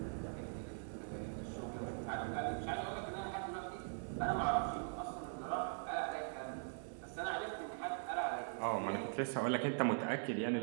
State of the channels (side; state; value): left; silent; digital silence